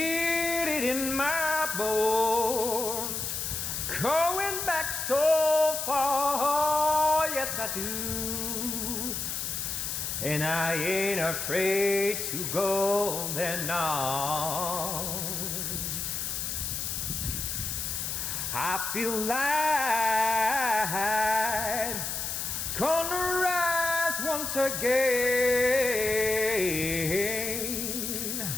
it in my bones, going back so far, yes I do. And I ain't afraid to go there now. I feel like gonna rise once again.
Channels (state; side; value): noise; left; hiss, 3 dB below the sound